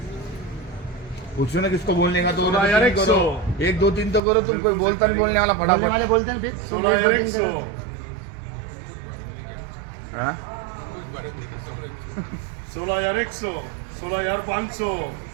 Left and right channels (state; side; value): drops out; left; at 4.2 s